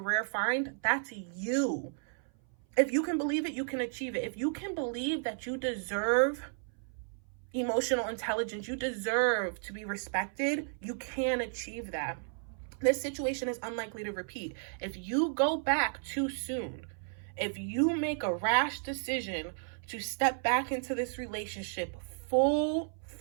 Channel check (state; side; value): silent; left; 55 dB below the other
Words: find. That's you. If you can believe it, you can achieve it. If you can believe that you deserve emotional intelligence, you deserve to be respected, you can achieve that. This situation is unlikely to repeat. If you go back too soon, if you make a rash decision to step back into this relationship full